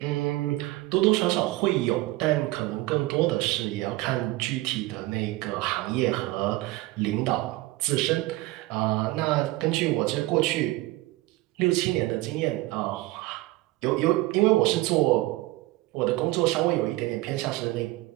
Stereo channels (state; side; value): quieter; left; 19.1 dB